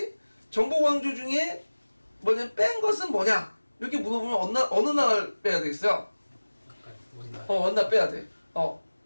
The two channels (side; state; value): both; inverted; correlation -1.00